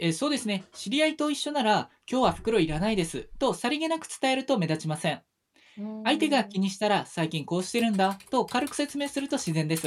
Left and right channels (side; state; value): both; identical; correlation 1.00